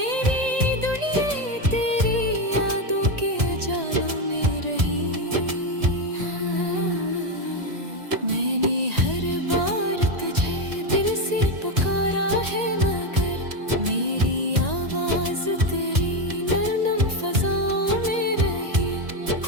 दुनिया तेरी यादों के उजालों में रही। मैंने हर बार तुझे दिल से पुकारा है, मगर मेरी आवाज तेरी नरम फजाओं में रही।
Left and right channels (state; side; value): late; left; 1.9 ms